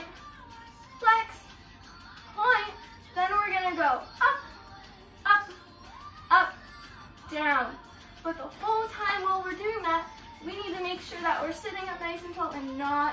flex, point. Then we're gonna go up, up, up, down. But the whole time while we're doing that, we need to make sure that we're sitting up nice and tall and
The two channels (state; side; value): identical; both; correlation 1.00